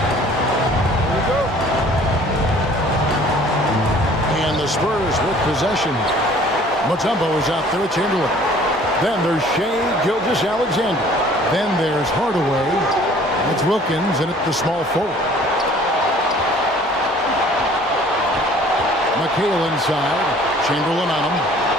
Here we go. And the Spurs with possession. Mutombo is out there with Chamberlain. Then there's Shea Gilgeous-Alexander. Then there's Hardaway. It's Wilkins in at the small forward. McHale inside. Chamberlain on him.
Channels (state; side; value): normal; both; correlation 0.53